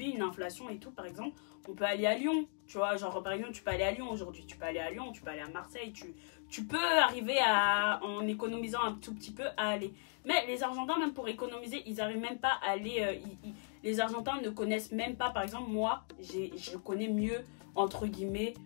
une inflation et tout, par exemple on peut aller à Lyon, tu vois, genre par exemple tu peux aller à Lyon aujourd'hui, tu peux aller à Lyon, tu peux aller à Marseille, tu peux arriver en économisant un tout petit peu à aller. Mais les Argentins même pour économiser ils arrivent même pas à aller, les Argentins ne connaissent même pas, par exemple moi je connais mieux entre guillemets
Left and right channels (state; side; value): silent; right; 53 dB below the other